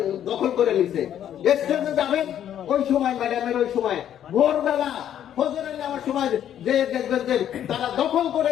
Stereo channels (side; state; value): right; quieter; 10.4 dB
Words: দখল করে নিছে। স্টেজে যাবেন ওই সময়, ম্যাডামের ওই সময় ভোরবেলা ফজরের নামার সময় যে দেখবেন যে তারা দখল করে